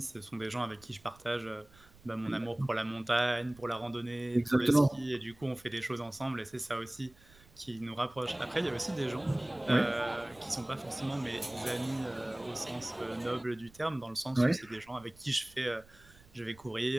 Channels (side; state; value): right; noise; rumble, 25 dB below the sound